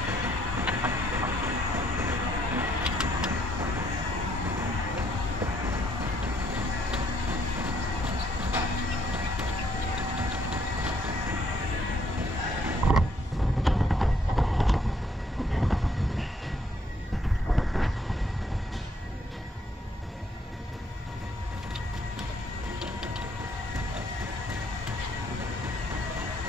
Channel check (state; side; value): normal; both; correlation 0.69